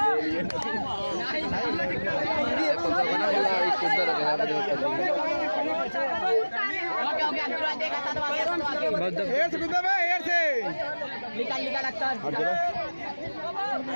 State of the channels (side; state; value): both; inverted; correlation -1.00